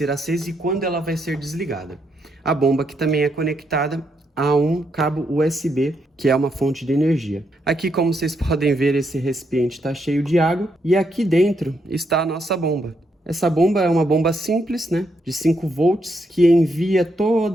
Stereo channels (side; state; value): both; normal; correlation 0.78